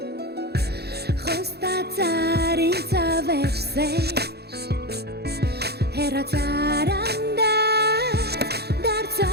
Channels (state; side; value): late; left; 0.47 ms